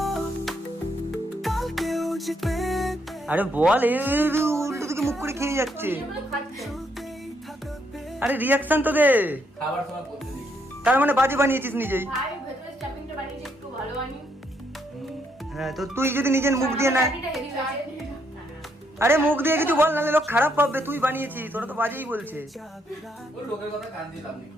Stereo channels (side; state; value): both; normal; correlation 0.74